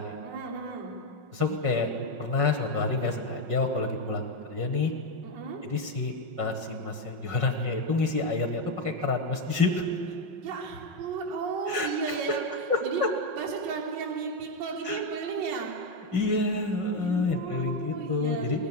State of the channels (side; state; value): left; late; 5.5 ms